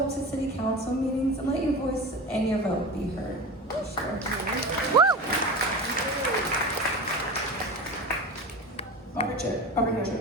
to city council meetings and let your voice and your vote be heard. Sure. Check.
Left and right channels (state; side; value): normal; both; correlation 0.29